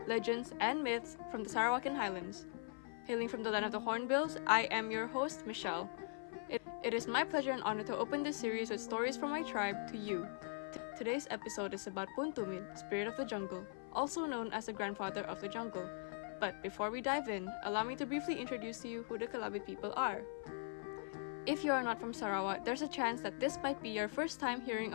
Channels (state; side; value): silent; right; 50 dB below the other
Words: legends, and myths from the Sarawakian Highlands. Hailing from the land of the Hornbills, I am your host, Michelle. It is my pleasure and honor to open this series with stories from my tribe to you. Today's episode is about Tumid, spirit of the jungle, also known as the grandfather of the jungle. But before we dive in, allow me to briefly introduce to you who the Kalabit people are. If you are not from Sarawak, there's a chance that this might be your first time